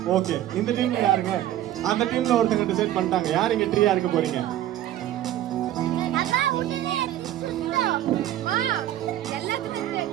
ஓகே. இந்த டீம்ல யாருங்க? அந்த டீம்ல ஒருத்தங்க டிசைட் பண்ணிட்டாங்க. யார் இங்க ஃப்ரீயா இருக்க போறீங்க?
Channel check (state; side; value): quieter; left; 12.9 dB